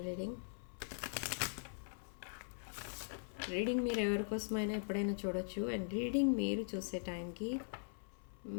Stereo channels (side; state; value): right; silent; 50 dB below the other